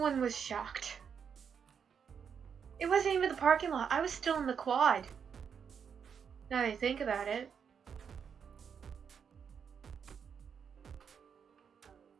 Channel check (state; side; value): quieter; left; 7.0 dB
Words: was shocked. It wasn't even the parking lot. I was still in the quad. Now that I think about it.